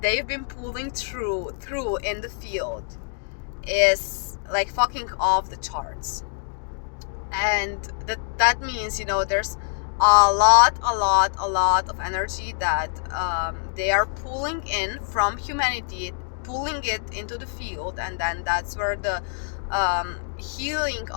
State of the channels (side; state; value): right; silent; digital silence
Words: they've been pulling through in the field is like fucking off the charts. And that means, there's a lot of energy that they are pulling in from humanity, pulling it into the field, and then that's where the healing